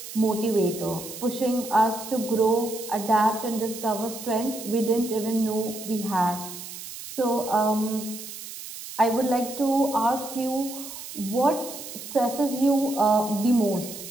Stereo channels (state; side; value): noise; right; hiss, 11 dB below the sound